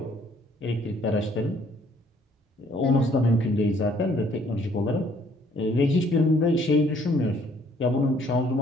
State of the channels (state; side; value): normal; both; correlation 0.62